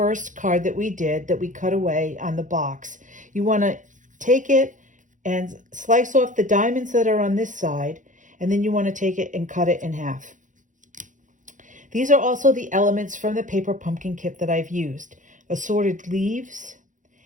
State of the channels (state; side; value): late; left; 0.37 ms